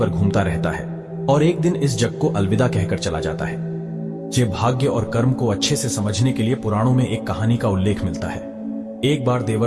घूमता रहता है और एक दिन इस जग को अलविदा कहकर चला जाता है। ये भाग्य और कर्म को अच्छे से समझने के लिए पुराणों में एक कहानी का उल्लेख मिलता है। एक बार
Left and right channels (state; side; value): identical; both; correlation 1.00